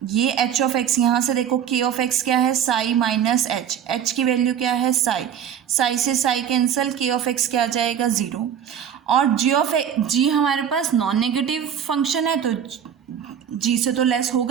ये एच ऑफ एक्स, यहाँ से देखो के ऑफ एक्स क्या है, साई माइनस एच, एच की वैल्यू क्या है साई, साई से साई कैंसिल, के ऑफ एक्स क्या आ जाएगा जीरो, और जी हमारे पास नॉन नेगेटिव फंक्शन है तो जी से तो लेस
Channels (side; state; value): left; quieter; 8.9 dB